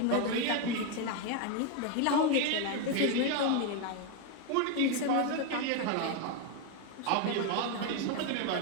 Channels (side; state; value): both; different; correlation 0.01